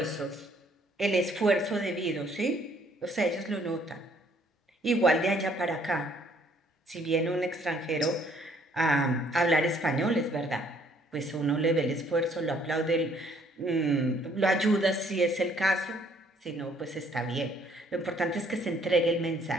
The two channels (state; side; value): normal; both; correlation 0.63